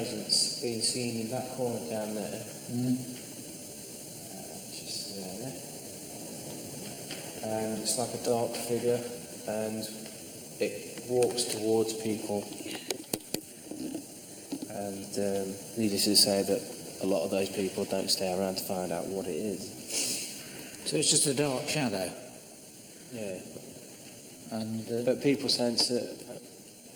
being seen in that corner down there. Just there. And it's like a dark figure, and it walks towards people. And needless to say that a lot of those people don't stay around to find out what it is. So it's just a dark shadow. Yeah. And But people sense that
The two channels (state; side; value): identical; both; correlation 1.00